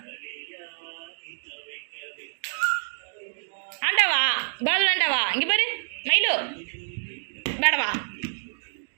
ஆண்டாவா பால் வேண்டாவா இங்கே பாரு மயிலு வேடவா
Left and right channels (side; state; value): left; silent; digital silence